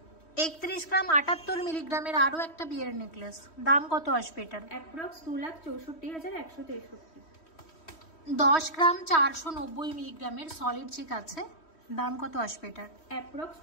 31 গ্রাম 78 মিলিগ্রামের আরো একটা বিয়ের নেকলেস, দাম কত আসবে এটার? অ্যাপ্রক্স 2,64,163। 10 গ্রাম 490 মিলিগ্রামের সলিড চিক আছে, দাম কত আসবে এটার? অ্যাপ্রক্স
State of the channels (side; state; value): right; late; 3.1 ms